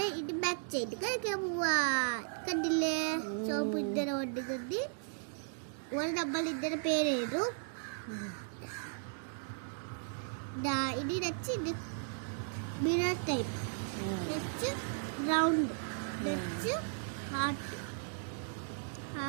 ഇത് ബാക്ക് സൈഡ് കഴിക്കാൻ പോവാ. കണ്ടില്ലേ? സോപ്പ് ഇങ്ങനെ കൊണ്ടുകൊണ്ട് നമ്മൾ ഇതിന്റെ പേരെഴുതും. ഇനി വെച്ച് ഇത് മിറർ ടൈപ്പ്, വെച്ച് റൗണ്ട്, വെച്ച് ഹാർട്ട്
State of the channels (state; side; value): silent; left; digital silence